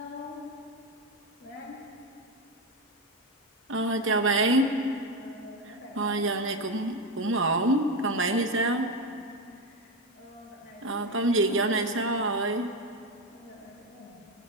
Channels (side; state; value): both; normal; correlation 0.13